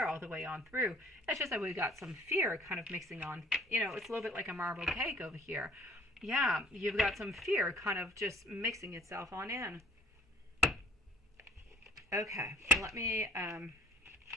all the way on through. It's just that we've got some fear kind of mixing on. You know, it's a little bit like a marble cake over here. Yeah, you've got some fear kind of just mixing itself on in. Okay, let me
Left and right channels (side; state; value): both; normal; correlation 0.55